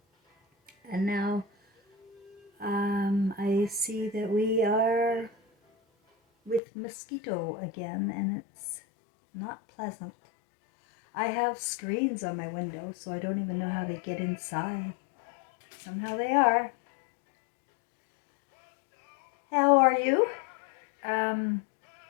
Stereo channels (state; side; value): drops out; right; at 6.6 s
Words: And now I see that we are with mosquito again, and it's not pleasant. I have screens on my window, so I don't even know how they get inside. Somehow they are. How are you? I'm